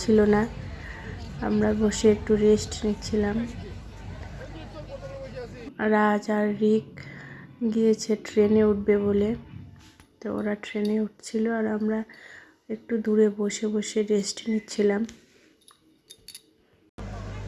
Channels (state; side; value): identical; both; correlation 1.00